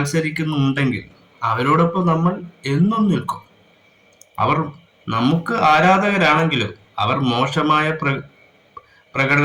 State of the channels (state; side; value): identical; both; correlation 1.00